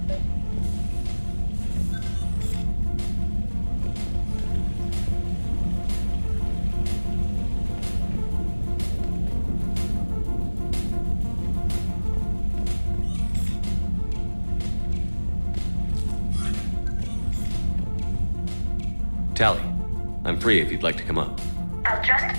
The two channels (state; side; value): inverted; both; correlation -1.00